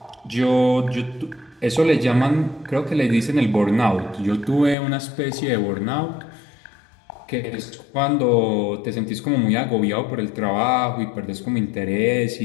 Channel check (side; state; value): right; drops out; at 4.8 s